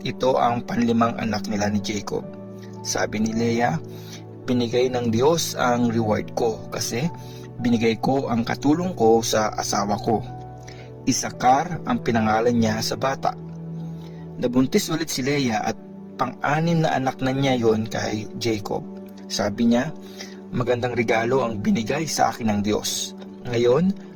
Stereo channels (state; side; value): identical; both; correlation 1.00